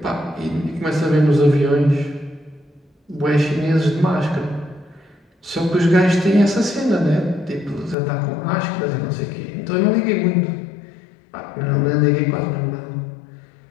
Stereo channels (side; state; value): right; drops out; at 8.0 s